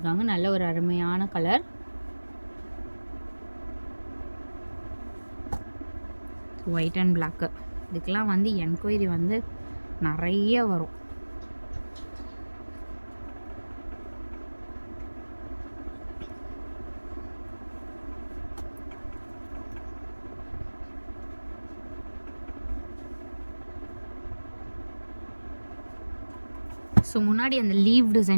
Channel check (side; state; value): both; inverted; correlation -1.00